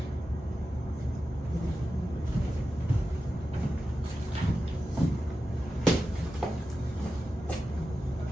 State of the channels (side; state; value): both; normal; correlation 0.92